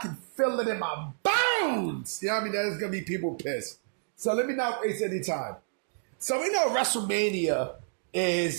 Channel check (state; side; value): silent; left; digital silence